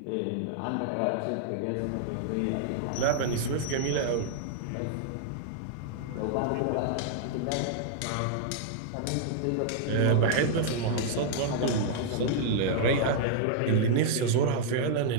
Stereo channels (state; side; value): different; both; correlation -0.01